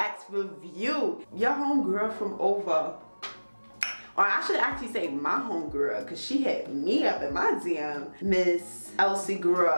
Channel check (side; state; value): both; inverted; correlation -1.00